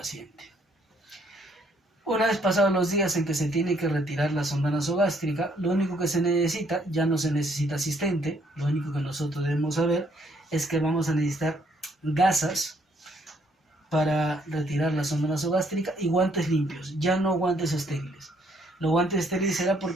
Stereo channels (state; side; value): normal; both; correlation 0.68